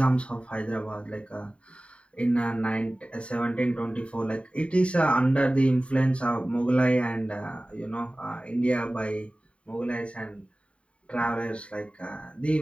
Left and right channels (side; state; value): right; late; 0.061 ms